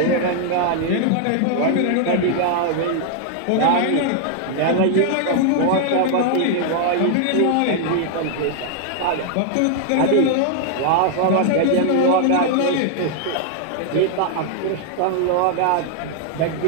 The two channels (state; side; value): different; both; correlation 0.00